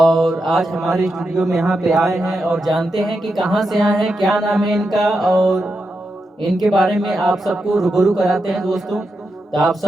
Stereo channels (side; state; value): both; normal; correlation 0.87